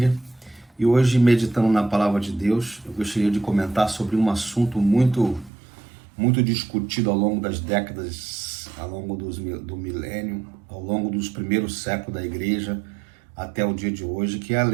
E hoje, meditando na palavra de Deus, eu gostaria de comentar sobre um assunto muito discutido ao longo das décadas, ao longo do milênio, ao longo dos primeiros séculos da igreja, até o dia de hoje, que é a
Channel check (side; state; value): left; drops out; at 5.5 s